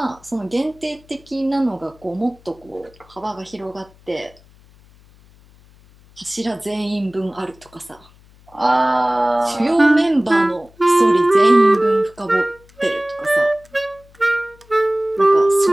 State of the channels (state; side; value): noise; left; hum, 27 dB below the sound